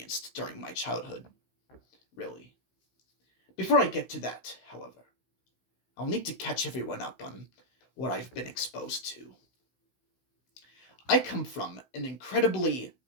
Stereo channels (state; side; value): late; right; 16 ms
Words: during my childhood, really. Before I get to that, however, I'll need to catch everyone up on what I've been exposed to. I come from an incredibly